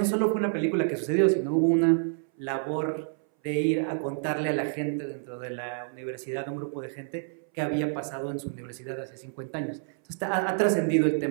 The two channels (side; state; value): left; silent; 59 dB below the other